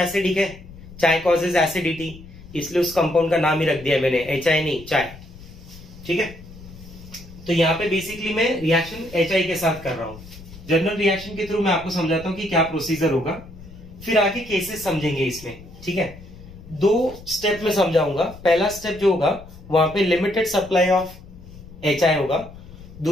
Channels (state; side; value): noise; left; rumble, 18 dB below the sound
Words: है, चाय कॉजेज एसिडिटी, इसलिए उस कंपाउंड का नाम ही रख दिया मैंने, HI नहीं, चाय। ठीक है, तो यहाँ पे बेसिकली मैं रिएक्शन HI के साथ कर रहा हूं। जनरल रिएक्शन के थ्रू मैं आपको समझाता हूं कि क्या प्रोसीजर होगा, फिर आगे केसेस समझेंगे इसमें। ठीक है, 2 स्टेप में समझाऊंगा। पहला स्टेप जो होगा वहां पे लिमिटेड सप्लाई ऑफ HI होगा,